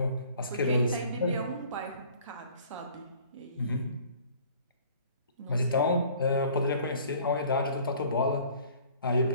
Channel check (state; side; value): inverted; both; correlation -0.52